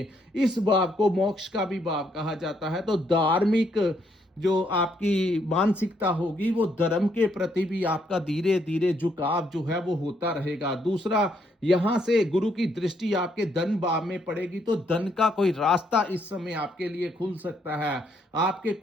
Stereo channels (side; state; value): both; normal; correlation 0.73